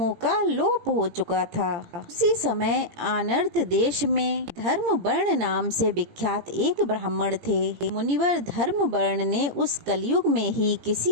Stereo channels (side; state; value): left; late; 18 ms